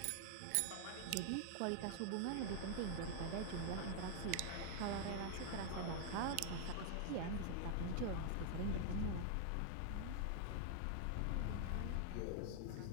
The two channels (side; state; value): both; different; correlation 0.00